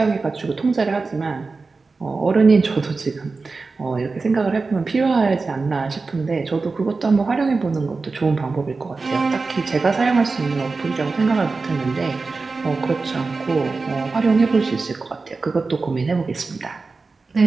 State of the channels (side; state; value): left; quieter; 4.0 dB